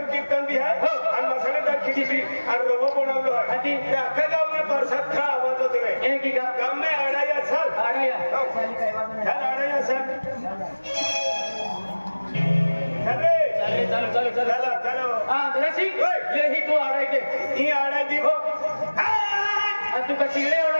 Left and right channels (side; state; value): both; inverted; correlation -1.00